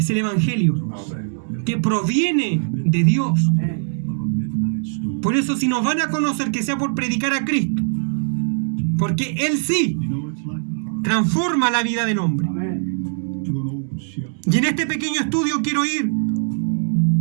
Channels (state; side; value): silent; left; 65 dB below the other